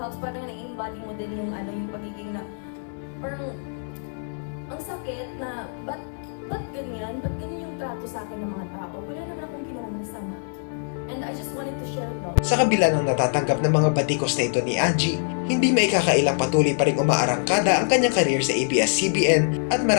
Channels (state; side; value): silent; right; 62 dB below the other